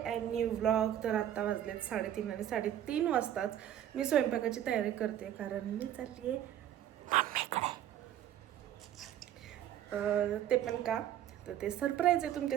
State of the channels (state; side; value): quieter; left; 11.2 dB